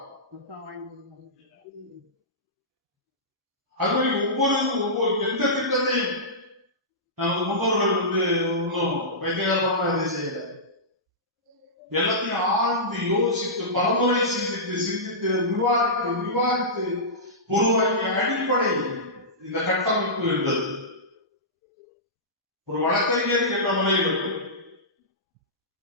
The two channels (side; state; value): both; normal; correlation -0.17